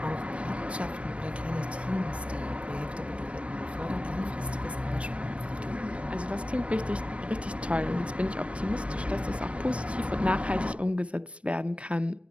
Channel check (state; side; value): late; left; 0.062 ms